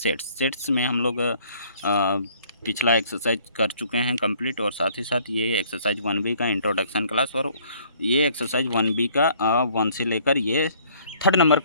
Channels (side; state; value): both; inverted; correlation -0.59